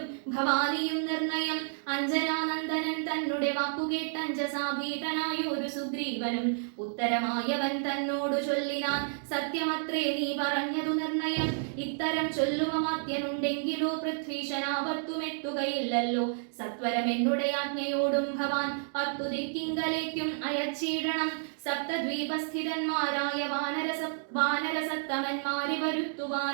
ഭവാനിയും നിർണയം അഞ്ജനാനന്ദനൻ തന്നുടെ വാക്കുകേട്ടഞ്ജസാഭീതനായൊരു സുഗ്രീവനും ഉത്തരമായവൻ തന്നോടു ചൊല്ലിനാൻ സത്യമത്രേ നീ പറഞ്ഞതു നിർണയം ഇത്തരം ചൊല്ലുമമാത്യനുണ്ടെങ്കിലോ പൃഥ്വീശനാപത്തുമെത്തുകയില്ലല്ലോ സത്വരം എന്നുടെ ആജ്ഞയോടും ഭവാൻ 10 ദിക്കിങ്കലേക്കും അയച്ചിടണം സപ്തദ്വീപസ്ഥിതന്മാരായ വാനരസത്തമന്മാരെ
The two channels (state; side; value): silent; left; digital silence